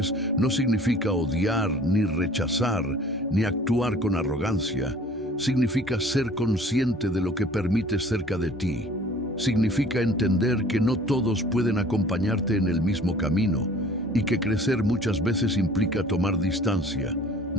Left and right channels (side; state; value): both; normal; correlation 0.50